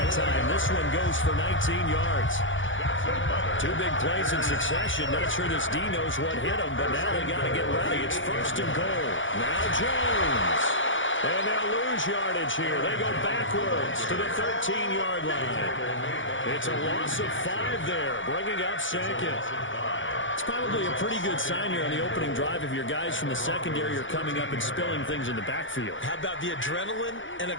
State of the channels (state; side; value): late; right; 0.56 ms